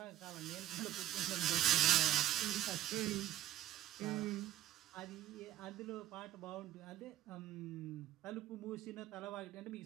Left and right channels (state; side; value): quieter; left; 13.2 dB